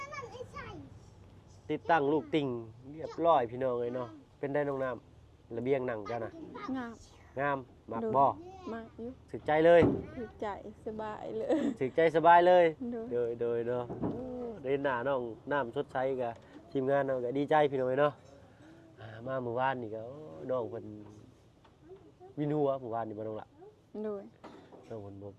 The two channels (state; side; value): identical; both; correlation 1.00